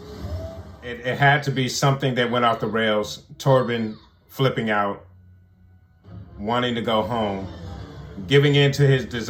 It had to be something that went off the rails. Torben flipping out, wanting to go home, giving in to his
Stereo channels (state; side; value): identical; both; correlation 1.00